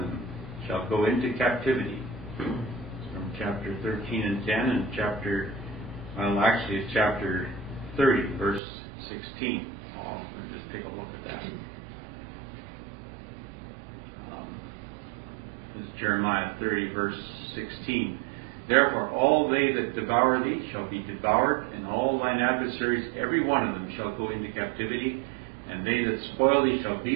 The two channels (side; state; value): left; drops out; at 8.6 s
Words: them, shall go into captivity. From chapter 13 and 10 and chapter 30, verse 16. Let's just take a look at that. This is Jeremiah 30, verse 16. Therefore all they that devour thee shall be devoured, and all thine adversaries, every one of them, shall go into captivity, and they that spoil thee shall